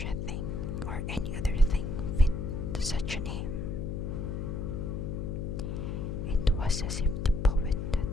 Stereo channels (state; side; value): noise; left; hum, 3 dB below the sound